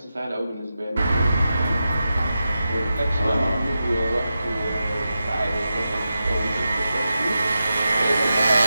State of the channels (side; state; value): both; inverted; correlation -0.90